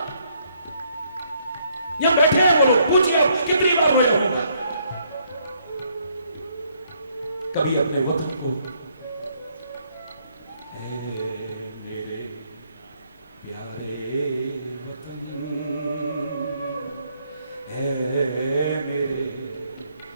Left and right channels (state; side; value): inverted; both; correlation -0.70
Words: यहां बैठे हैं वो लोग, पूछिए कितनी बार मैं रहूंगा। कभी अपने वतन को, मेरे प्यारे वतन, है मेरे